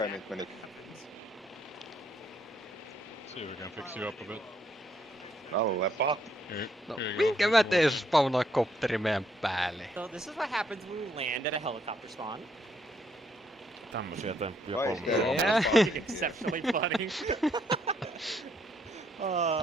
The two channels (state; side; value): normal; both; correlation 0.71